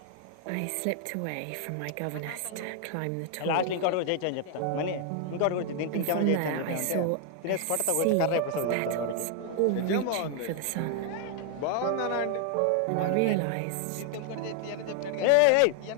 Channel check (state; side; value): different; both; correlation 0.00